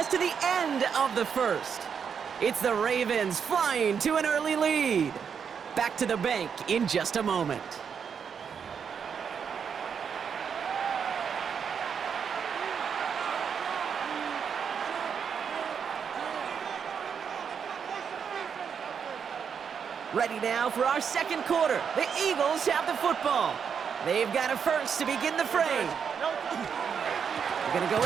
to the end of the 1st. It's the Ravens flying to an early lead. Back to the bank in just a moment. Ready now for our second quarter. The Eagles have the football. They've got a first to begin the fray. They're going to go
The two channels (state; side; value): quieter; left; 7.0 dB